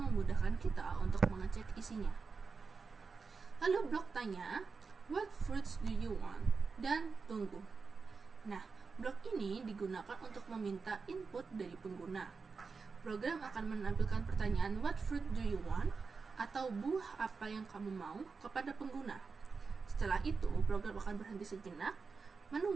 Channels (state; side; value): quieter; left; 4.8 dB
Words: kita untuk mengecek isinya. Lalu blok tanya, what fruits do you want? Dan tunggu. Nah, blok ini digunakan untuk meminta input dari pengguna. Program akan menampilkan pertanyaan what fruit do you want atau buah apa yang kamu mau kepada pengguna. Setelah itu, program akan berhenti sejenak,